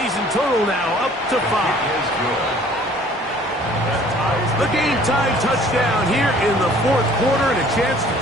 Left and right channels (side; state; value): both; normal; correlation 0.54